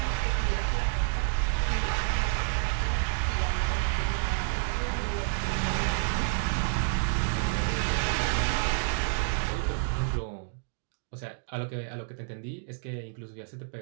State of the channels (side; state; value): left; silent; digital silence